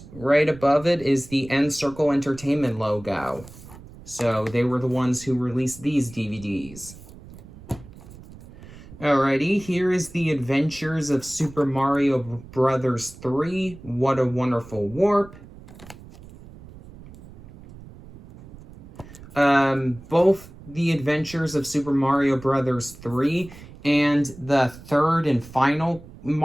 right above it is the N-Circle Entertainment logo. So they were the ones who released these DVDs. Alrighty, here is the Adventures of Super Mario Bros. 3, What a Wonderful Warp. Both the Adventures of Super Mario Bros. 3 and the third and final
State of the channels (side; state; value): right; noise; rumble, 18 dB below the sound